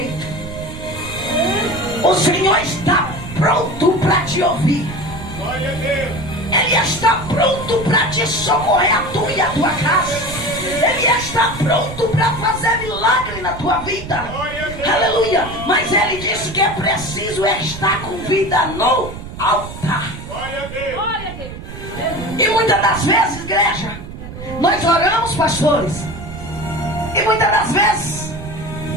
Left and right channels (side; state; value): right; noise; rumble, 11 dB below the sound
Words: O Senhor está pronto para te ouvir, ele está pronto para te socorrer, a tua e a tua casa, ele está pronto para fazer milagre na tua vida, aleluia, mas ele disse que é preciso estar com vida no altar. E muitas das vezes, igreja, nós oramos, pastores, E muitas das vezes